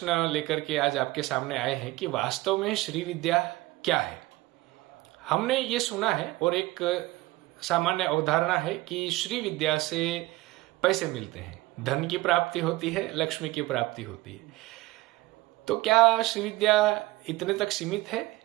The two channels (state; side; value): quieter; left; 19.5 dB